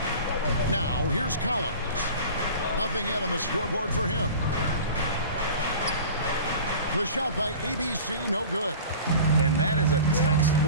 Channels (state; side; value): inverted; both; correlation -0.39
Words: Now, here's Collins. Nothing yet on the scoreboard for him. The shot by ABC, no good. And that is a